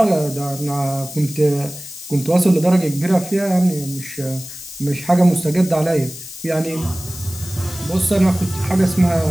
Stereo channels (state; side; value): noise; left; hiss, 13 dB below the sound